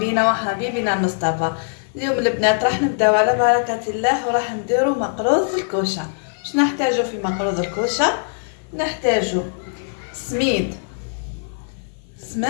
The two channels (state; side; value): silent; right; 55 dB below the other